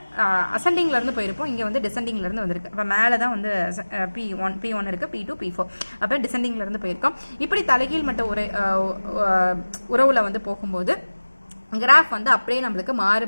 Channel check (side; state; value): both; inverted; correlation -1.00